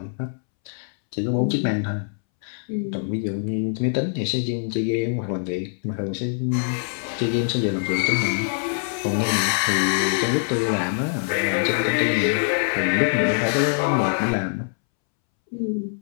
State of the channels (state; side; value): silent; right; 63 dB below the other